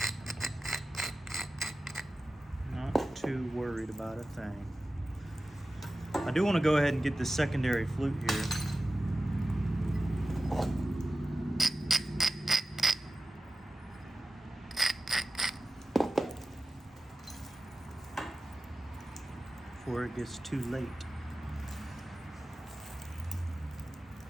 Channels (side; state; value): both; normal; correlation 0.93